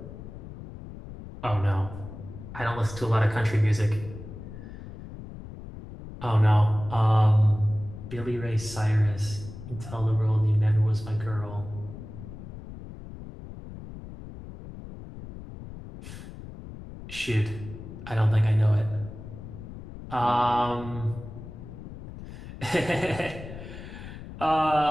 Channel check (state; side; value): noise; left; rumble, 13 dB below the sound